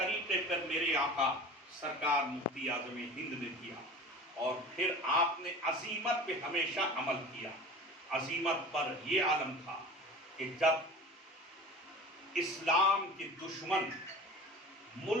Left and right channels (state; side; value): normal; both; correlation 0.37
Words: پر میرے آقا سرکار مفتی اعظم ہند نے دیا، اور پھر آپ نے عزیمت پہ ہمیشہ عمل کیا۔ عزیمت پر یہ عالم تھا کہ جب اسلام کے دشمن